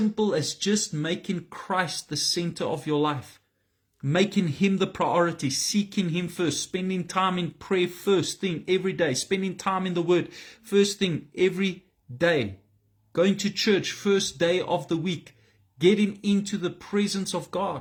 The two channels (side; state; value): both; identical; correlation 1.00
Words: as just making Christ the center of your life. Making Him the priority, seeking Him first, spending time in prayer first thing every day, spending time in the Word first thing every day, going to church first day of the week, getting into the presence of